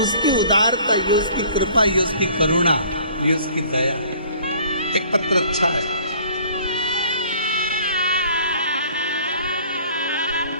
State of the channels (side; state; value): both; inverted; correlation -0.53